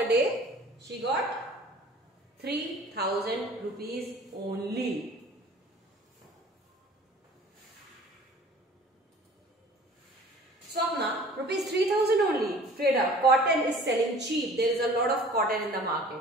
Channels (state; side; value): normal; both; correlation 0.48